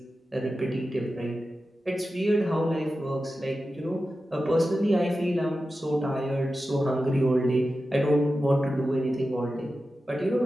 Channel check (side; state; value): both; normal; correlation 0.93